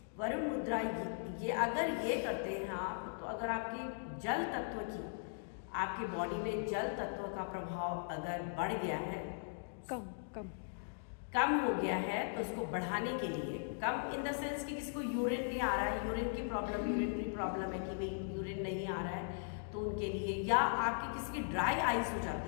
वरुण मुद्रा ये अगर ये करते हैं आप तो अगर आपकी जल तत्व की आपकी बॉडी में जल तत्व का प्रभाव अगर बढ़ गया है, कम हो गया है, तो उसको बढ़ाने के लिए, कम इन द सेंस कि किसी को यूरिन नहीं आ रहा है, यूरिन की प्रॉब्लम, यूरिनरी प्रॉब्लम है कि भाई यूरिन नहीं आ रहा है तो उनके लिए, या आपकी किसी की ड्राई आइज हो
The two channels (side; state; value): right; silent; digital silence